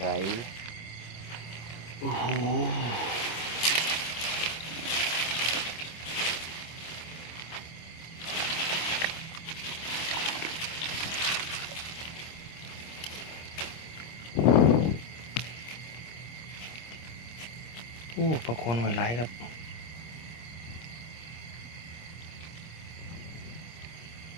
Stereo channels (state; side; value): late; right; 25 ms